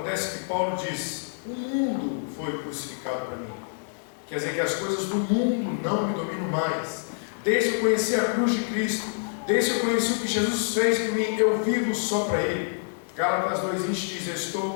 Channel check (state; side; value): silent; right; digital silence